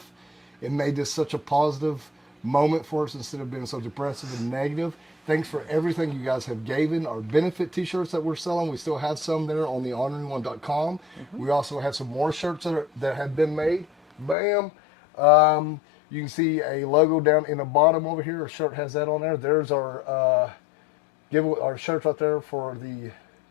It made this such a positive moment for us instead of being so depressive and negative. Thanks for everything you guys have given. Our benefit t-shirts that we're selling, we still have some there on the orneryone.com. We also have some more shirts that have been made. Bam. You can see a logo down in the bottom over here. Our shirt has that on there. There's our our shirts right there for the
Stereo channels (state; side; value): drops out; right; at 14.4 s